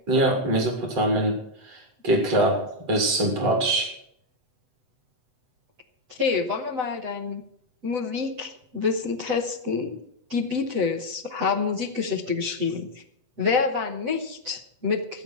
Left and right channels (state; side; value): late; left; 8.0 ms